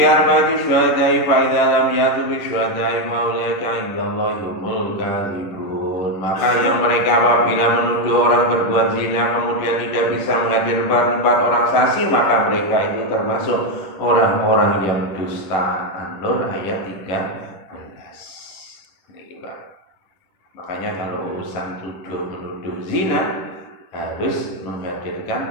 arba'ati syuhada'i fa idza lam ya'tu bi syuhada'i fa ulaika 'indallahi humul kadzibun. Maka yang mereka apabila menuduh orang berbuat zina kemudian tidak bisa menghadirkan 4 orang saksi, maka mereka itu termasuk orang-orang yang dusta. An-Nur ayat 13. Ini Pak. Makanya kalau urusan tuduh menuduh zina harus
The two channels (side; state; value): right; late; 11 ms